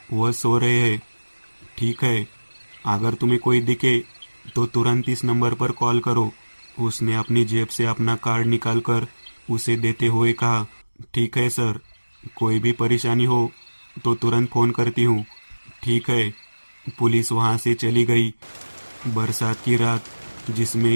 वह सो रहे हैं। ठीक है, अगर तुम्हें कोई दिखे तो तुरंत इस नंबर पर कॉल करो। उसने अपनी जेब से अपना कार्ड निकालकर उसे देते हुए कहा। ठीक है सर, कोई भी परेशानी हो तो तुरंत फोन करती हूँ। ठीक है। पुलिस वहां से चली गई। बरसात की रात,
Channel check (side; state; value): both; inverted; correlation -1.00